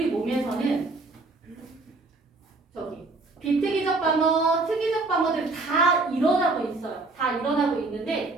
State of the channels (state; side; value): quieter; left; 3.4 dB